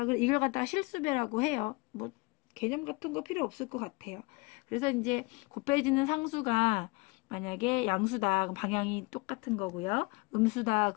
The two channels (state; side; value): quieter; right; 26.3 dB